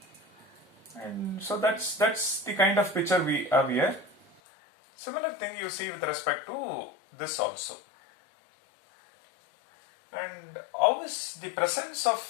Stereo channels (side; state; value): right; drops out; at 4.4 s